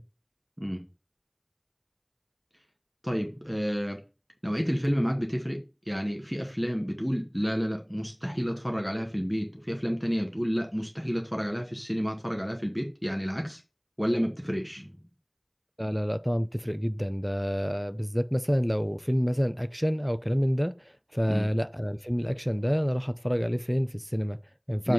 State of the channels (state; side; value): identical; both; correlation 1.00